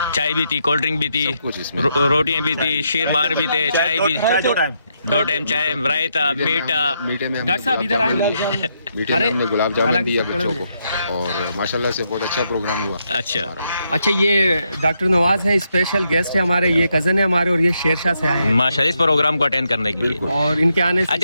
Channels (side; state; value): both; inverted; correlation -0.79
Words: चाय भी थी, कोल्ड ड्रिंक भी थी, सब कुछ इसमें। रोटियां भी थी, शीर मार भी थे, चाय भी 2 टाइम चाय, रायता, मीठा। मीठे में डॉक्टर साहब इधर आए। मीठे में हमने गुलाब जामुन दिया बच्चों को और माशाल्लाह से बहुत अच्छा प्रोग्राम हुआ। अच्छा अच्छा ये डॉक्टर नवाज है, स्पेशल गेस्ट है हमारे, ये कजन है हमारे और ये शेरशाह से आए हैं माशाल्लाह इस प्रोग्राम को अटेंड करने के लिए। और इनके आने से